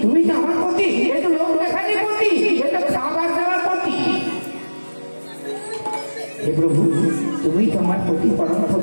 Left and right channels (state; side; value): inverted; both; correlation -1.00